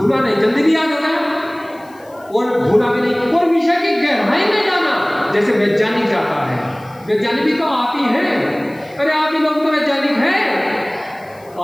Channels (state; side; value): noise; left; hiss, 29 dB below the sound